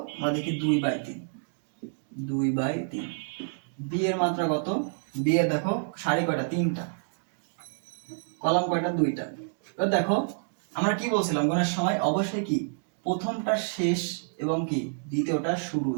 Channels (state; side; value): silent; left; digital silence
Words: আমরা দেখি 2/3, 2/3। বি এর মাত্রা কত, বি এর দেখো সারি কয়টা, 3টা, কলাম কয়টা, 2টা। এবার দেখো আমরা কি বলছিলাম গুণের সময়, অবশ্যই কি প্রথমটা শেষ এবং কি দ্বিতীয়টা শুরু